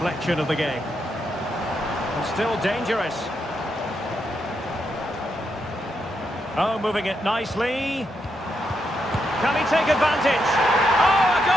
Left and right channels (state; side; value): normal; both; correlation 0.81